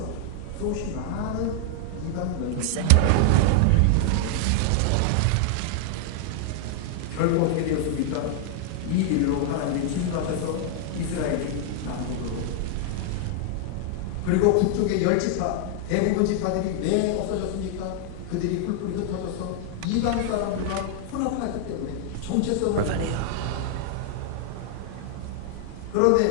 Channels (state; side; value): different; both; correlation -0.01